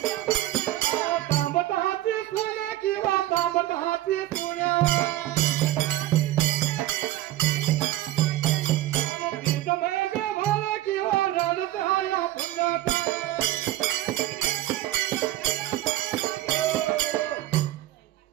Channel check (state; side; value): quieter; left; 14.9 dB